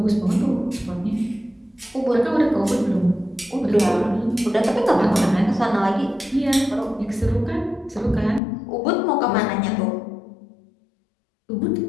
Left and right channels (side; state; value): right; drops out; at 8.4 s